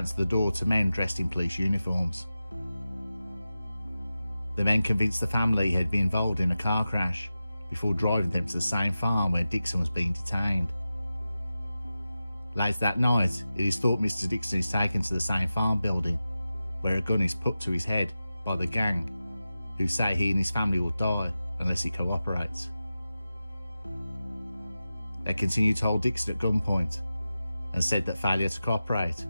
the door to men dressed in police uniforms. The men convinced the family he had been involved in a car crash before driving them to the same farm where Dixon was being detained. Later that night, it is thought Mr. Dixon is taken to the same farm building, where a gun is put to his head by the gang, who say he and his family will die unless he cooperates. They continue to hold Dixon at gunpoint and said that failure to cooperate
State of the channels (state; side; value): inverted; both; correlation -0.94